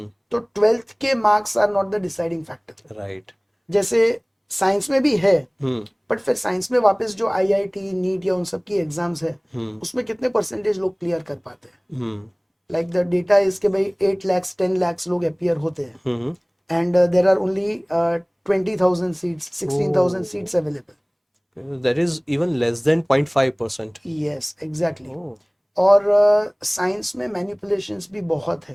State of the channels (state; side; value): identical; both; correlation 1.00